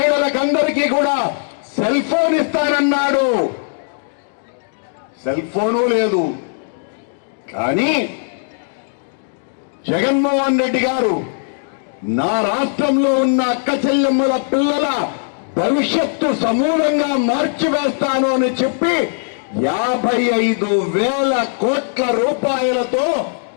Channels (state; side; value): silent; right; digital silence